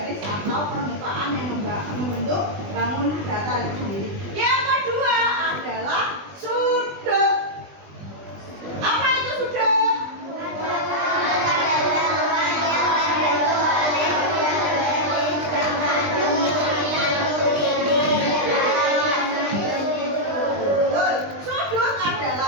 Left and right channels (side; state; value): left; late; 20 ms